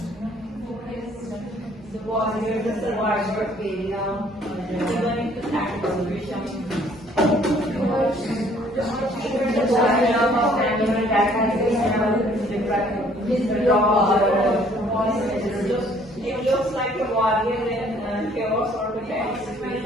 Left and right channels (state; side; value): normal; both; correlation 0.60